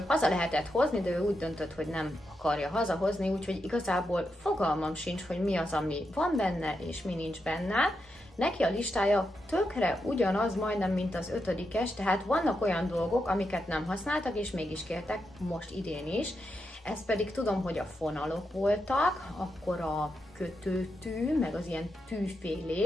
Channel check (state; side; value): normal; both; correlation 0.85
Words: haza lehetett hozni, de ő úgy döntött, hogy nem akarja hazahozni, úgyhogy igazából fogalmam sincs, hogy mi az, ami van benne, és mi nincs benne. Neki a listája tökre ugyanaz majdnem, mint az 5-es, tehát vannak olyan dolgok, amiket nem használtak, és mégis kértek, most idén is. Ez pedig tudom, hogy a fonalok voltak, akkor a kötőtű, meg az ilyen